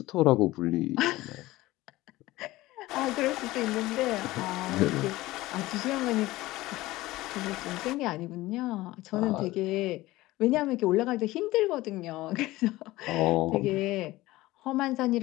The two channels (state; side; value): quieter; right; 18.2 dB